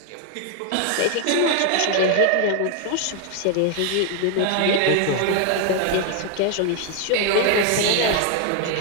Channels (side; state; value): both; different; correlation 0.01